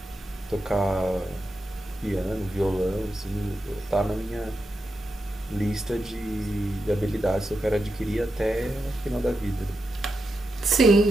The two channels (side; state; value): both; normal; correlation 0.87